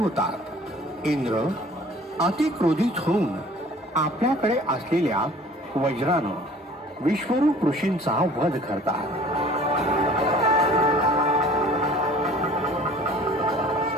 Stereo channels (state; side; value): normal; both; correlation 0.49